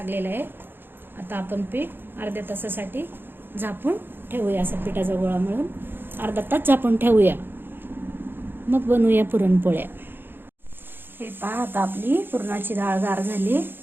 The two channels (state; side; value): late; left; 0.10 ms